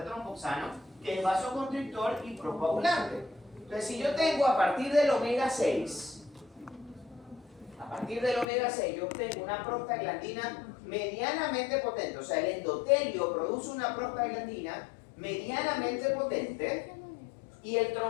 tromboxano, que es vasoconstrictor y procoagulante. Entonces, si yo tengo a partir del omega 6, yo obtengo una prostaglandina medianamente potente, o sea, el endotelio produce una prostaglandina medianamente potente y el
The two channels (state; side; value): drops out; right; at 8.5 s